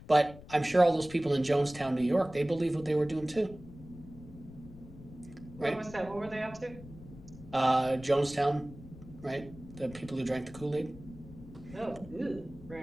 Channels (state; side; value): noise; left; rumble, 17 dB below the sound